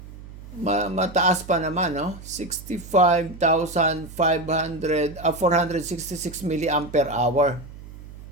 mataas pa naman, no? 466 milliampere hour.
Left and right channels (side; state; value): right; noise; hum, 16 dB below the sound